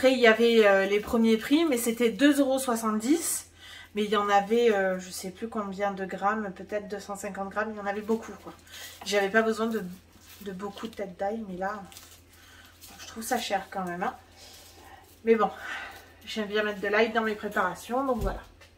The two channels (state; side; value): identical; both; correlation 1.00